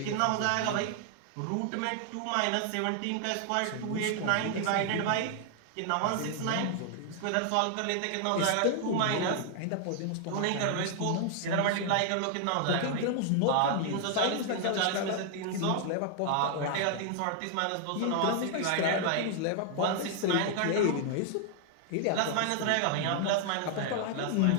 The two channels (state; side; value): different; both; correlation 0.00